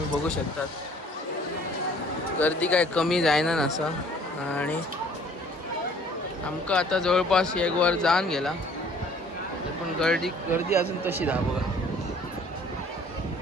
बघू शकतात गर्दी काय कमी जायना नसा. आणि आमका आता जवळपास एक वर जाऊन गेला पण गर्दी अजून तशी दा बघा.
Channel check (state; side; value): normal; both; correlation 0.55